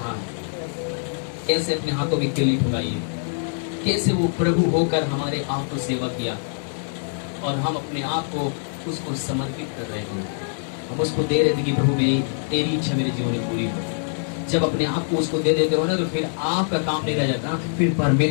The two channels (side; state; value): right; silent; 62 dB below the other